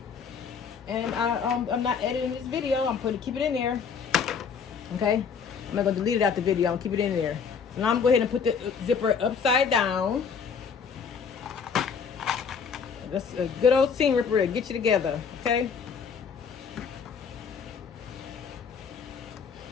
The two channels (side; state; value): right; quieter; 6.3 dB